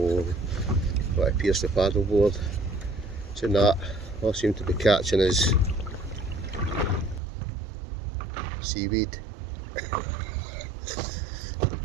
what appears to paddleboard. So that, all I seem to be catching is seaweed.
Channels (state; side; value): drops out; left; at 7.2 s